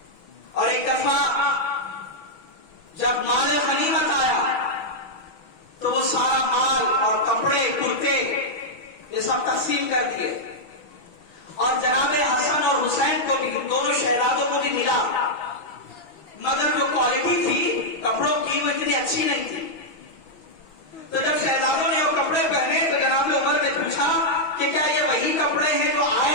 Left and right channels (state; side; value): late; right; 6.2 ms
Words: اور ایک دفعہ جب مال غنیمت آیا تو وہ سارا مال اور کپڑے کرتے یہ سب تقسیم کر دیے، اور جناب حسن اور حسین کو بھی، دونوں شہزادوں کو بھی ملا، مگر جو کوالٹی تھی کپڑوں کی وہ اتنی اچھی نہیں تھی. تو جب شہزادوں نے وہ کپڑے پہنے تو جناب عمر نے پوچھا کہ کیا یہ وہی کپڑے ہیں جو